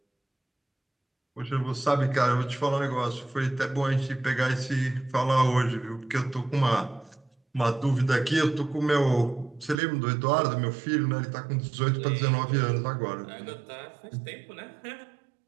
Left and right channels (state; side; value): drops out; left; at 9.8 s